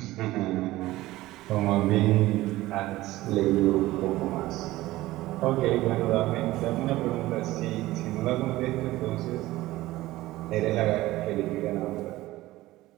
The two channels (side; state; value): left; quieter; 17.3 dB